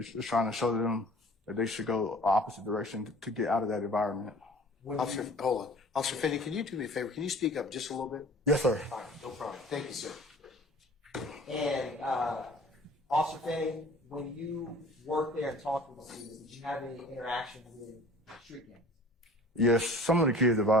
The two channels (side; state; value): both; normal; correlation 0.47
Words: just trying to show them that they should go opposite direction to get out of that environment. Officer, hold on. Officer Finney, can you do me a favor? Can you speak up just a little bit? Yes, sir. All right, no problem. Thank you, sir. And Officer Finny, when you worked there and talked with the students, did you have any interaction with street gangs? Yes, some of the kids